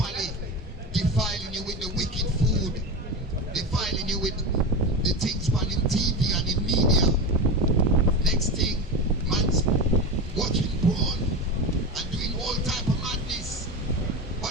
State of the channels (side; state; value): both; normal; correlation 0.22